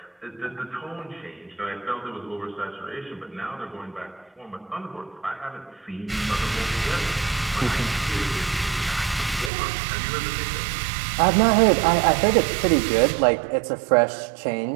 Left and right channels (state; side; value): drops out; left; at 9.5 s